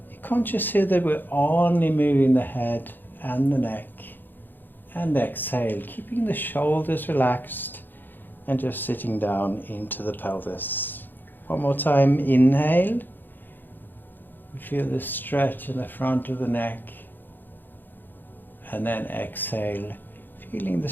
conscious here that we're only moving the head and the neck. And exhale, keeping the shoulders relaxed and just sitting down into the pelvis. One more time, inhale. You feel the stretch in the front of the neck. And then exhale, feeling the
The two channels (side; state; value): right; late; 0.092 ms